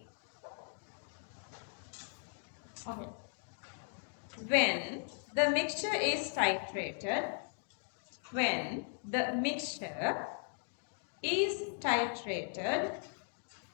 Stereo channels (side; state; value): right; silent; 53 dB below the other